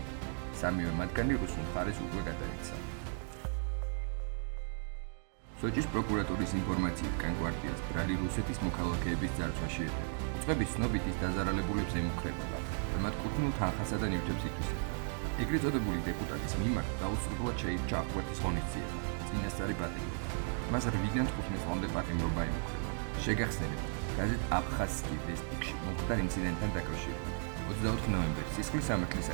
სამივე მათგანი რუსულ მხარეს უკვე გადაეცა. სოჭის პროკურატურის ინფორმაციით კანკვარტიას ბრალი რუსეთის მოქალაქეების ძარცვაში ედება. უწყების ცნობით ის დაზარალებულებს ემუქრებოდა და მათ კუთვნილ თანხასა და ნივთებს ითვისებდა. ეგრეთ წოდებული დეპუტატის მიმართ დაუსრულებლად შეირჩა აღკვეთის ღონისძიება, წინასწარი პატიმრობა. მას 8-დან 15 წლამდე პატიმრობა ემუქრებოდა. შეგახსენებთ, გაზეთ აფხაზსკი ვესტიკში მომხდარ ინციდენტთან დაკავშირებით. 24 ნოემბერს სისხლის სამართლის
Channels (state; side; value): silent; left; 54 dB below the other